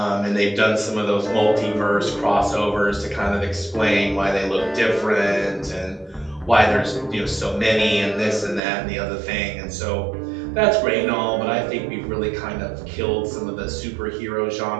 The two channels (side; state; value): left; drops out; at 8.6 s